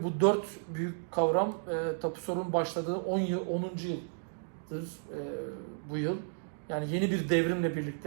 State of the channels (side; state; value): left; silent; digital silence